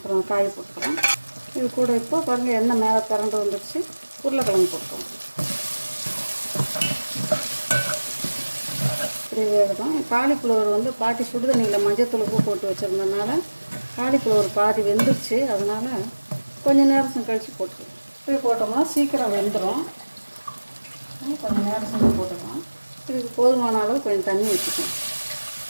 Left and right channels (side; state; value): both; inverted; correlation -1.00